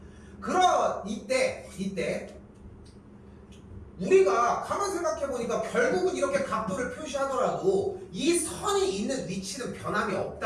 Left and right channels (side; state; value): both; identical; correlation 1.00